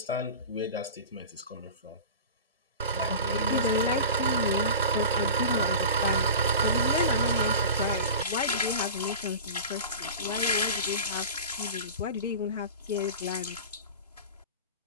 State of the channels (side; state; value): both; inverted; correlation -0.33